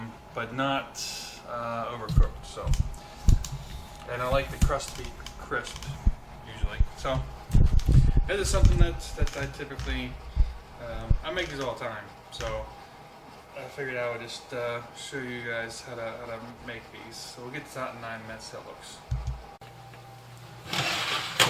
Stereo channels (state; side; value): identical; both; correlation 1.00